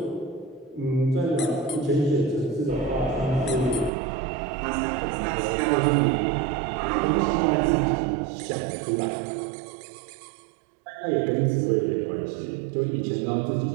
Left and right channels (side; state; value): left; drops out; at 3.9 s